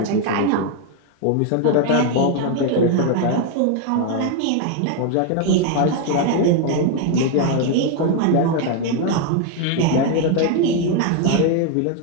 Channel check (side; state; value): both; different; correlation 0.01